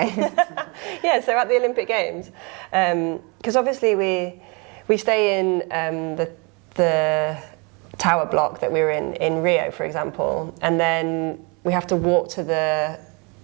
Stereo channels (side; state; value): left; quieter; 30.8 dB